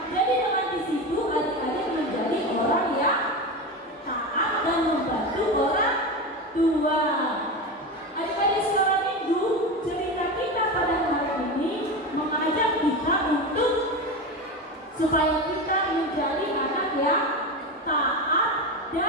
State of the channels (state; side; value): normal; both; correlation 0.21